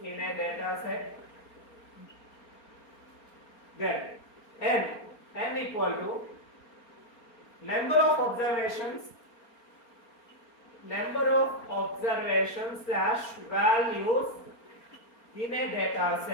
in a data set. Then n equal to number of observations slash values in a data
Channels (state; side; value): late; right; 4.4 ms